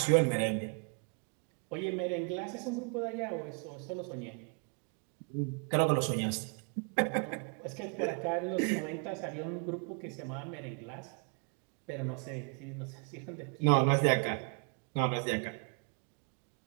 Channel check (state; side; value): quieter; left; 38.7 dB